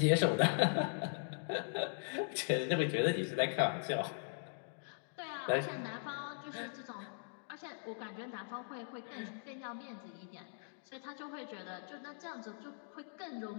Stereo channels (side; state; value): right; silent; digital silence